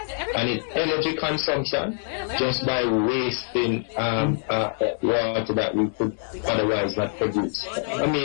and in energy consumption just by wasting water that we could otherwise not produce. I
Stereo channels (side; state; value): right; silent; 62 dB below the other